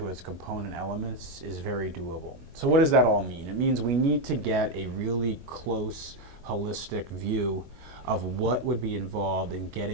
its component elements, is very doable. So what does that all mean? It means we need to get a really close, holistic view of what would be involved in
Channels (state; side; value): late; left; 22 ms